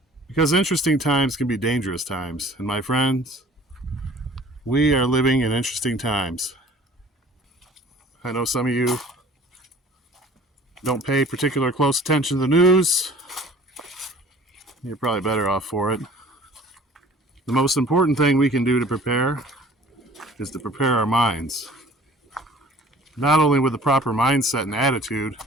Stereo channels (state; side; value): normal; both; correlation 0.49